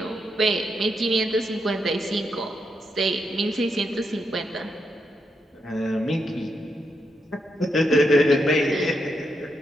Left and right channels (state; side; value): normal; both; correlation 0.82